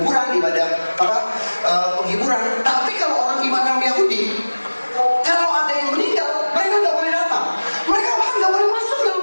ibadah penghiburan. Tapi kalau orang iman Yahudi, kalau ada yang meninggal, mereka nggak boleh datang. Mereka bahkan nggak boleh masuk dalam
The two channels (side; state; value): both; inverted; correlation -1.00